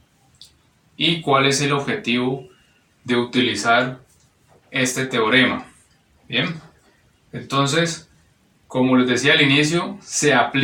y cuál es el objetivo de utilizar este teorema. Bien, entonces, como les decía al inicio, se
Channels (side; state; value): both; identical; correlation 1.00